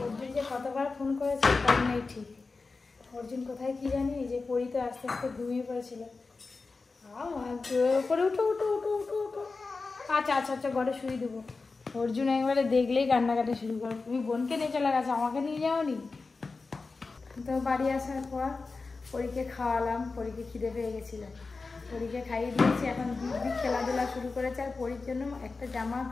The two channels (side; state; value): right; quieter; 4.0 dB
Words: অর্জুন যে কতবার ফোন করেছে তার নেই ঠিক। অর্জুন কোথায় কি জানি, যে পড়িতে আস্তে আস্তে ঘুমিয়ে পড়েছিল। পরে উঠো উঠো উঠো উঠো উঠো। আচ্ছা আচ্ছা আচ্ছা, ঘরে শুয়ে দেবো। অর্জুন একবারে দেখলেই কান্নাকাটি শুরু করে। তুমি বোনকে নিয়ে চলে গেছো, আমাকে নিয়ে যাওনি। তো বাড়ি আসার পর পরীকে খাওয়ালাম, পরীকে খিদে পেয়ে গেছিল, পরীকে খাইয়ে দিয়েছি। এখন দিব্যি খেলাধুলা শুরু করেছে। আর পরীর জন্য একটা জামা